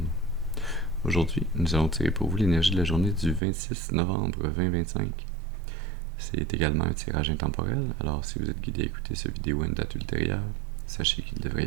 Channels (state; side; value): drops out; left; at 3.4 s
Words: Aujourd'hui, nous allons tirer pour vous l'énergie de la journée du 26 novembre 2025. C'est également un tirage intemporel, alors si vous êtes guidé à écouter cette vidéo à une date ultérieure, sachez qu'il devrait